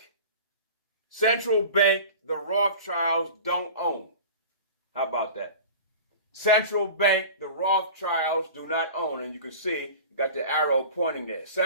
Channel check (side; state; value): both; inverted; correlation -0.37